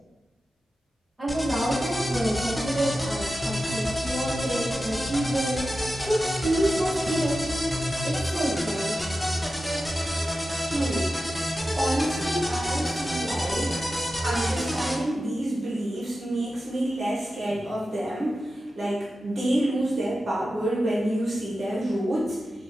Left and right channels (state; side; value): normal; both; correlation 0.93